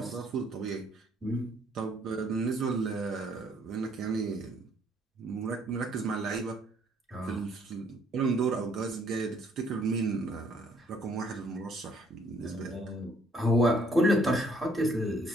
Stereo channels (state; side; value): normal; both; correlation 0.64